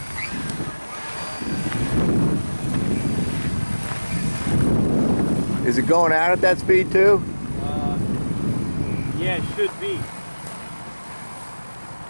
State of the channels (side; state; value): both; inverted; correlation -1.00